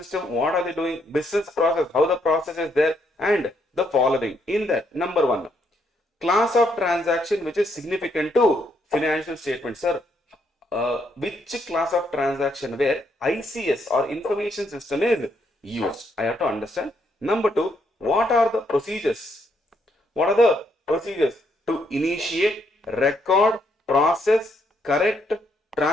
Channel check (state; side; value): normal; both; correlation 0.74